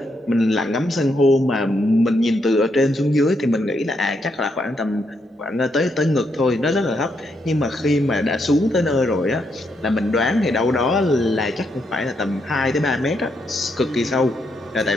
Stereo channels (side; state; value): both; normal; correlation 0.78